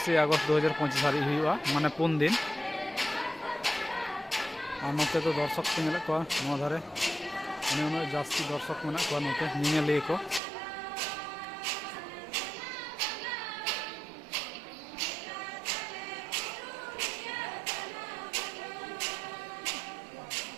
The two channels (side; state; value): left; drops out; at 10.4 s